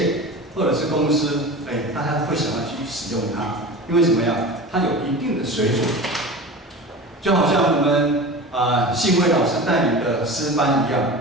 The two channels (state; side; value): normal; both; correlation 0.33